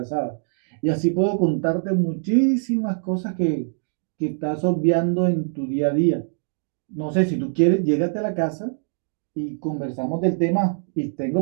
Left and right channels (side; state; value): left; silent; digital silence